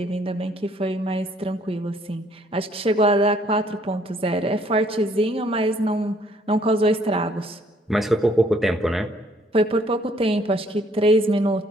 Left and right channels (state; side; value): normal; both; correlation 0.63